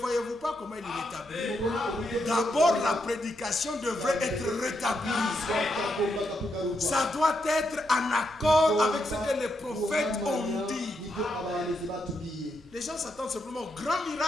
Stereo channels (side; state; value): both; normal; correlation 0.81